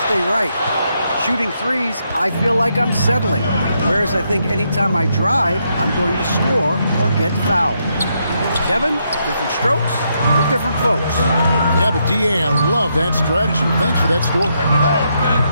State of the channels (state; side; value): inverted; both; correlation -0.78